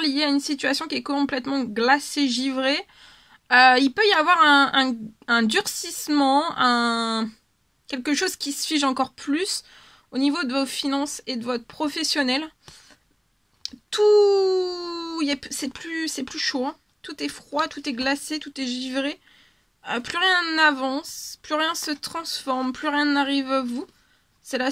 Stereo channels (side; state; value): both; identical; correlation 1.00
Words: lié à une situation qui est complètement glacée, givrée. Il peut y avoir un durcissement, quelque chose qui se fige encore plus au niveau de vos finances et de votre professionnel. C'est plus chaud, hein. Tout est froid, tout est glacé, tout est givré. Plus rien n'avance, plus rien se transforme, plus rien n'arrive à vous. C'est la